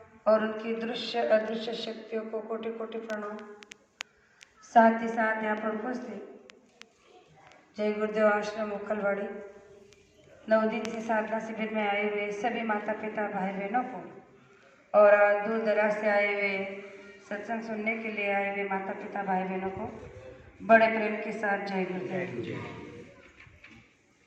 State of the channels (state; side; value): identical; both; correlation 1.00